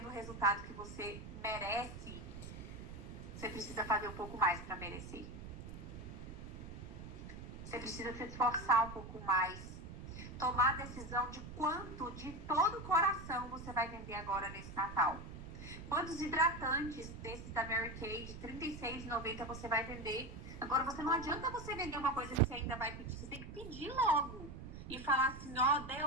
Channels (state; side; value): noise; right; rumble, 11 dB below the sound